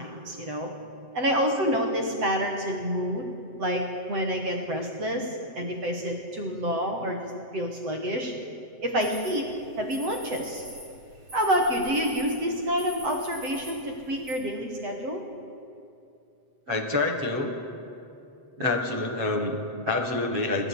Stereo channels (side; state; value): left; late; 7.8 ms